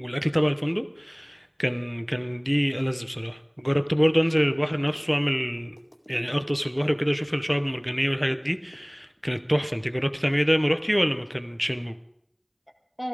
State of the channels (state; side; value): identical; both; correlation 1.00